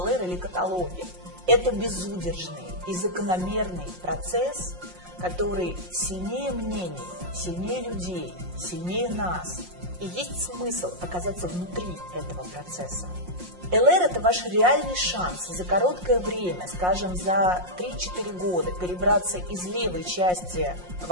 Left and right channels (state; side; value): late; left; 5.6 ms